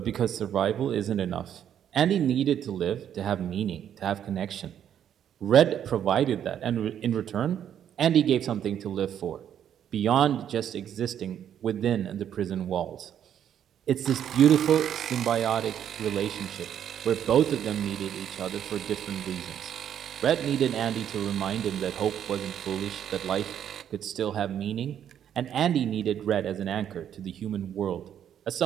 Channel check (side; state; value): left; quieter; 9.6 dB